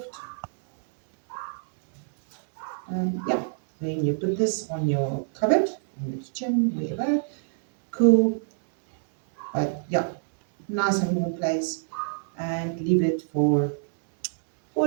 And yeah, then you put this on your cupboard, in the kitchen, wherever, cool. But yeah, nice and warm place, and leave it for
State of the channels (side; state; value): left; silent; 59 dB below the other